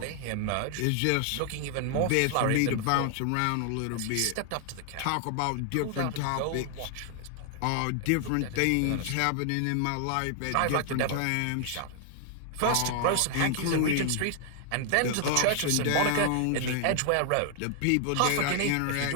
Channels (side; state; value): both; different; correlation 0.00